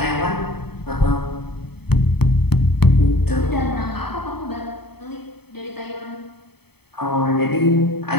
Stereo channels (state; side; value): late; right; 0.97 ms